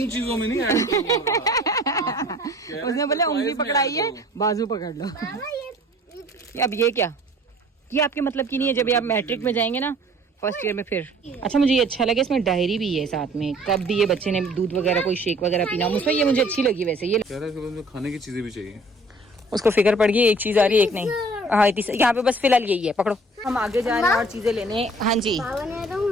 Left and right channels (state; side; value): normal; both; correlation 0.52